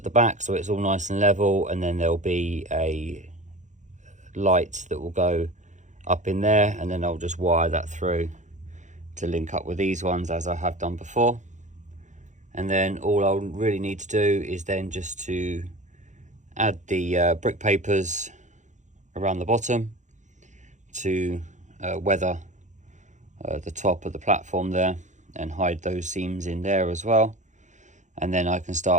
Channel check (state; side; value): late; left; 0.35 ms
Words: the back so it's all nice and level, and then there'll be a light that will go up in there, and then I'll just wire that through to link up with these ones as I have done before. And then all I'll really need to do is then just to add the brick papers around the bottom to weather the top of the platform there, and hide those seams in there as well. And then I can